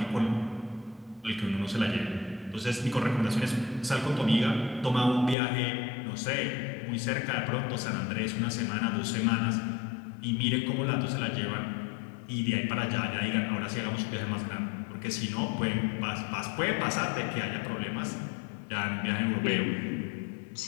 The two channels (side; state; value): right; drops out; at 5.4 s